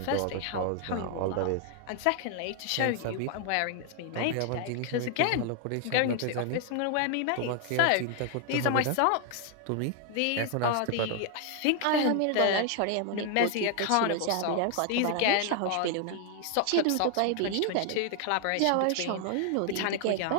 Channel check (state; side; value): different; both; correlation 0.00